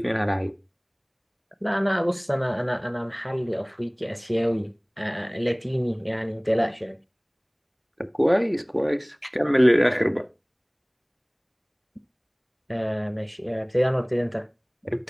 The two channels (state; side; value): identical; both; correlation 1.00